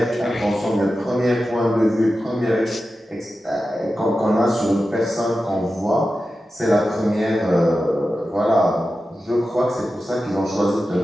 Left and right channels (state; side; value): normal; both; correlation 0.92